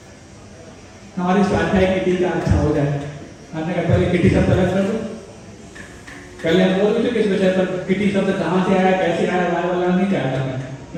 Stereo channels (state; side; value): identical; both; correlation 1.00